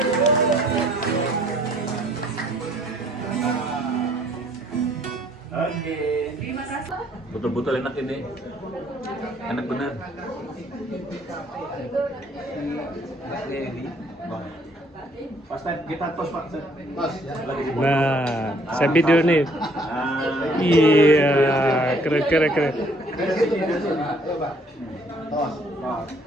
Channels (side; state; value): both; normal; correlation 0.62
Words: Oke. Terima kasih. Betul-betul enak ini. Enak bener. Pas kita tos Pak. Tos, ya. Nah, saya video nih. Ah. Iya, keren. Ayo, Pak. Tos.